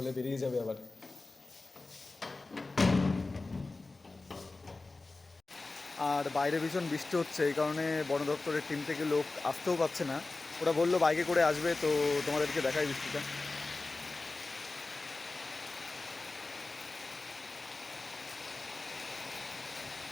বেরিয়ে যাবে আবার। আর বাইরে ভীষণ বৃষ্টি হচ্ছে, এই কারণে বন দপ্তরের টিম থেকে লোক আসতেও পারছে না। ওরা বললো বাইকে করে আসবে, তো তোমাদেরকে দেখাই বৃষ্টিটা।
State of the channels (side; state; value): right; quieter; 3.4 dB